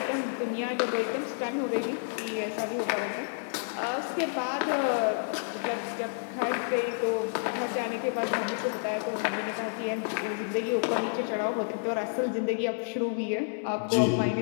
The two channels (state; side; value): silent; right; digital silence